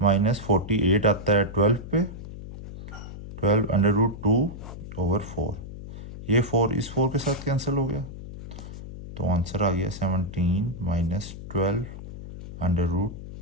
48 आता है 12 पे, 12 अंडर रूट 2 ओवर 4। ये 4 इस 4 के साथ कैंसिल हो गया, तो आंसर आ गया 17 माइनस 12 अंडर रूट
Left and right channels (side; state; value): left; noise; hum, 11 dB below the sound